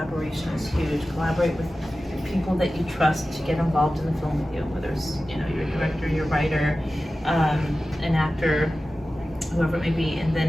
is huge. Collaborate with people that you trust to get involved in the film with you, whether it's your director, your writer, an actor, whoever it may be. And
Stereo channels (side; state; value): both; normal; correlation 0.95